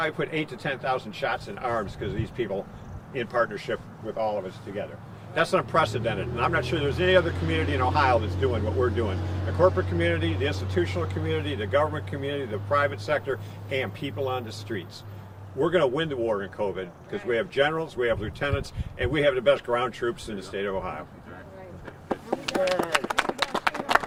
put 8,000 to 10,000 shots in arms because of these people in partnership with all of us together. That's unprecedented, and I'm not sure there's any other community in Ohio that's doing what we're doing. The corporate community, the institutional community, the government community, the private sector, and people on the streets. We're going to win the war in COVID because we have generals, we have lieutenants, and we have the best ground troops in the state of Ohio.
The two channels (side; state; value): both; identical; correlation 1.00